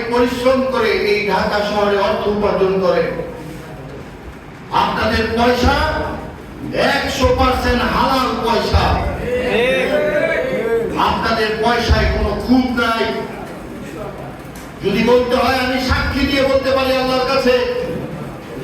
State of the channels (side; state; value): both; identical; correlation 1.00